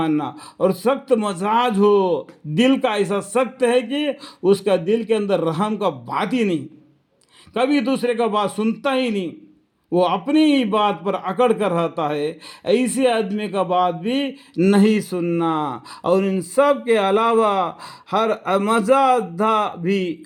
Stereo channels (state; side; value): identical; both; correlation 1.00